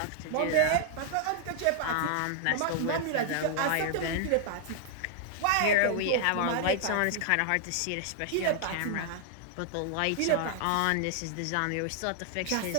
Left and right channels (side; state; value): both; different; correlation 0.00